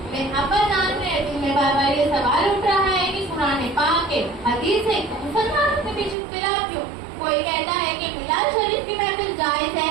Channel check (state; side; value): drops out; left; at 6.2 s